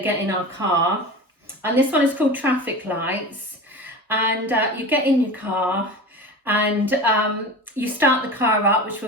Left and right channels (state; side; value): normal; both; correlation 0.31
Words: get in our car. And this one is called traffic lights. And you get in your car and you start the car up, which